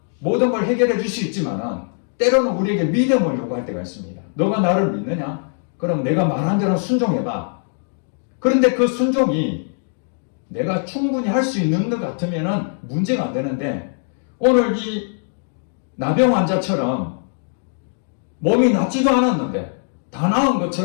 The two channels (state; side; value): silent; right; 59 dB below the other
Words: 모든 걸 해결해 줄 수 있지만은 때로는 우리에게 믿음을 요구할 때가 있습니다. 너가 나를 믿느냐? 그럼 내가 말한 대로 순종해봐. 그런데 그 순종이 내가 충분히 할 수 있는 것 같으면은 문제가 안 되는데, 오늘 이 나병 환자처럼 몸이 낫지도 않았는데 다 나은